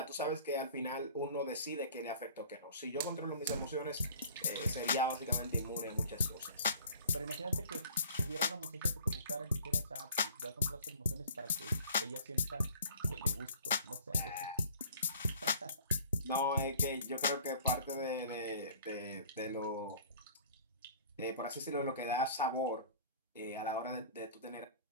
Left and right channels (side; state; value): both; inverted; correlation -0.49